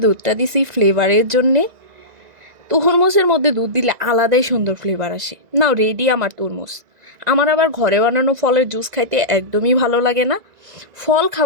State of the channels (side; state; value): left; late; 1.9 ms